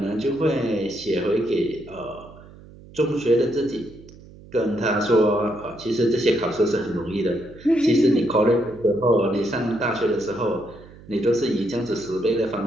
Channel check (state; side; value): noise; right; hum, 20 dB below the sound